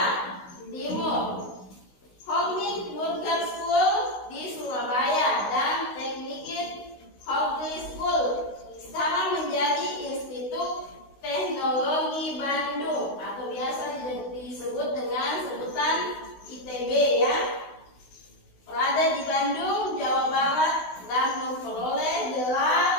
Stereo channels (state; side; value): late; right; 16 ms